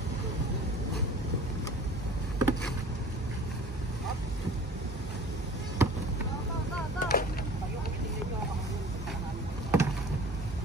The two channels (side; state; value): both; normal; correlation 0.44